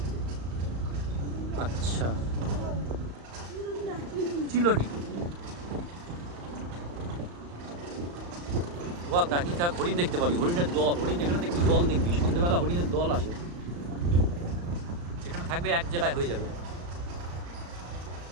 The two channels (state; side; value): late; left; 35 ms